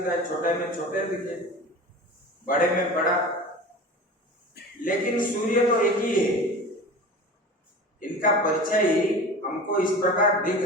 है, छोटे में छोटे दिखे, बड़े में बड़ा, लेकिन सूर्य तो एक ही है। इनका परछाई हमको इस प्रकार दिख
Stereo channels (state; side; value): normal; both; correlation 0.35